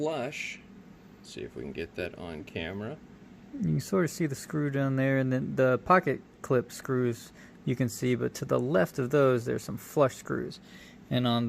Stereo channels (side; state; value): both; identical; correlation 1.00